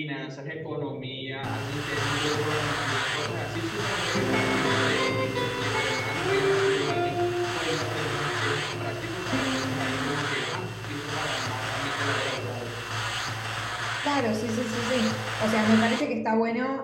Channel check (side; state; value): both; identical; correlation 1.00